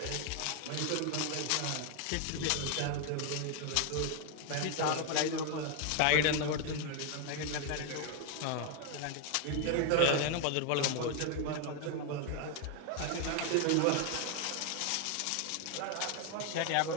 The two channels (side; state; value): both; different; correlation 0.01